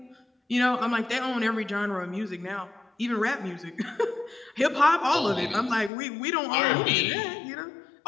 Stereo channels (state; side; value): drops out; right; at 5.9 s